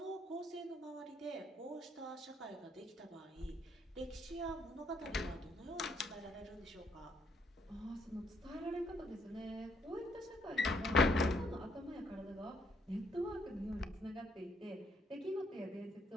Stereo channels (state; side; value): normal; both; correlation 0.71